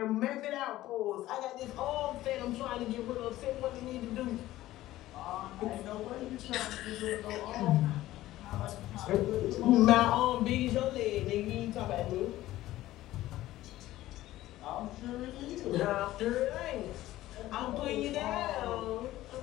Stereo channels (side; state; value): right; quieter; 15.5 dB